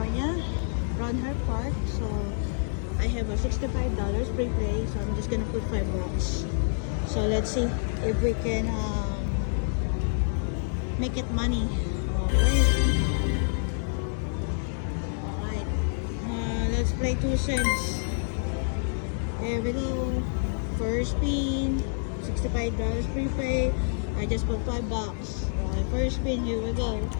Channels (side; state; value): right; silent; 60 dB below the other